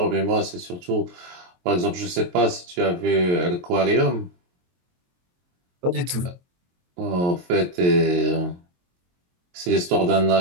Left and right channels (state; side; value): late; left; 22 ms